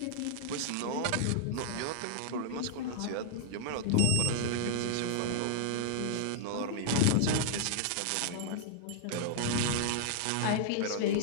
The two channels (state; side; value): different; both; correlation -0.01